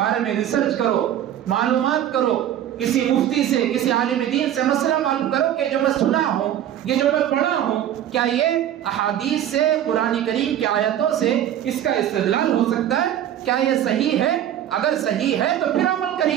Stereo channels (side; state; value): left; quieter; 11.1 dB